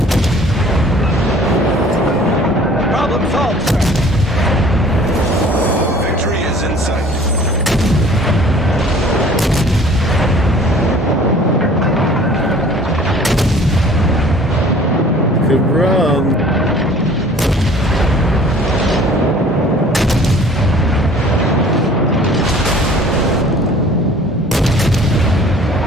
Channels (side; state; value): both; normal; correlation 0.50